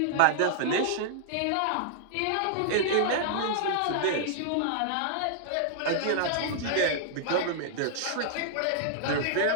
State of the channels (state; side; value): different; both; correlation -0.01